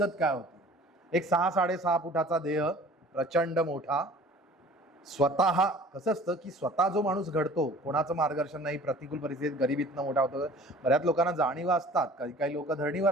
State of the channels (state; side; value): normal; both; correlation 0.47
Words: काय होती? एक 6-6.5 फुटाचा देह, प्रचंड मोठा, स्वतः कसं असतं की स्वतः जो माणूस घडतो, कोणाचं मार्गदर्शन नाही, प्रतिकूल परिस्थितीत गरिबीतनं मोठा होतो. बऱ्याच लोकांना जाणीवा असतात, काही काही लोक